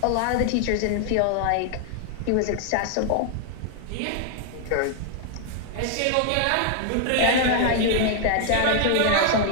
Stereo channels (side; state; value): both; different; correlation 0.00